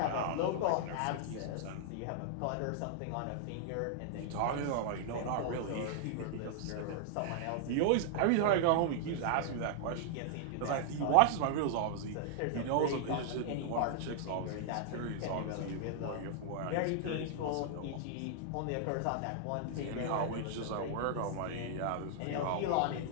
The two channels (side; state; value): both; different; correlation -0.01